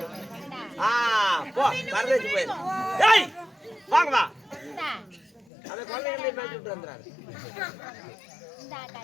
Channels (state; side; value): drops out; right; at 5.5 s